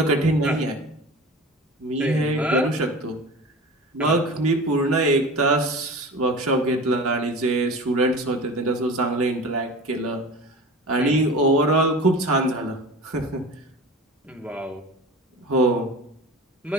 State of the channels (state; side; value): normal; both; correlation 0.35